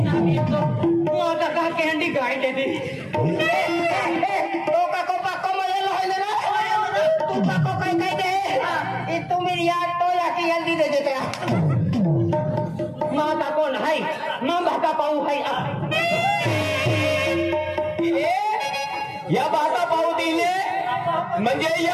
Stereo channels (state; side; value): identical; both; correlation 1.00